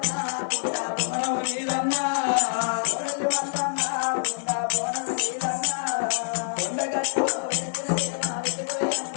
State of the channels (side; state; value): right; silent; digital silence